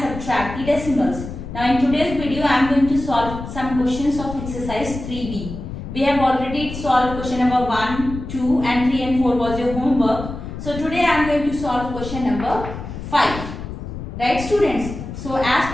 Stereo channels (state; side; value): noise; left; rumble, 9 dB below the sound